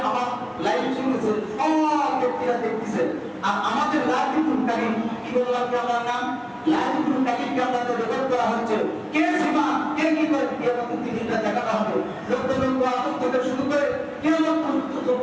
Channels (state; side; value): identical; both; correlation 1.00